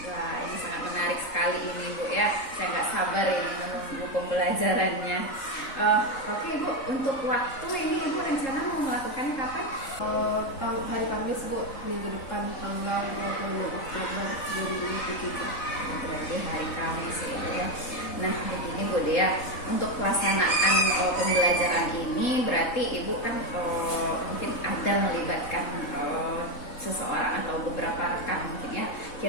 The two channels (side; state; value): right; late; 3.7 ms